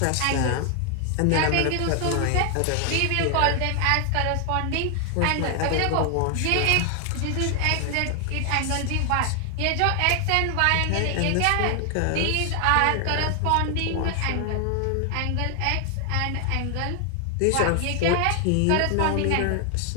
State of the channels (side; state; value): both; different; correlation 0.00